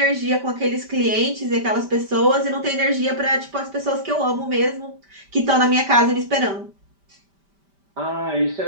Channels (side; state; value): left; late; 5.1 ms